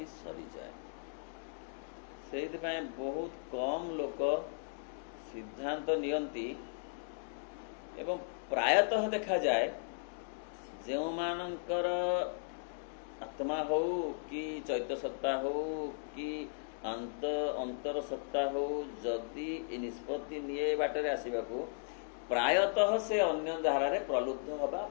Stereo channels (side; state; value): right; silent; digital silence